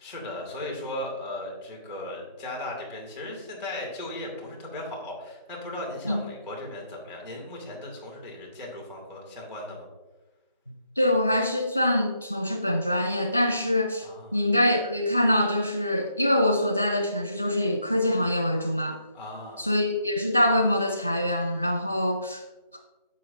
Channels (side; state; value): both; inverted; correlation -0.74